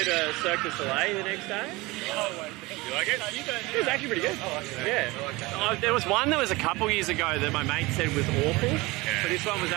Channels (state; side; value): quieter; left; 22.4 dB